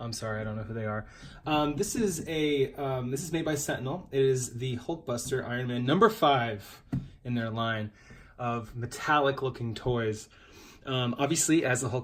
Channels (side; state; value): both; identical; correlation 1.00